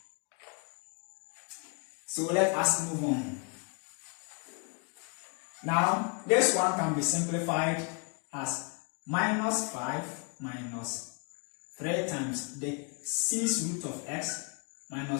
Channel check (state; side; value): quieter; right; 37.5 dB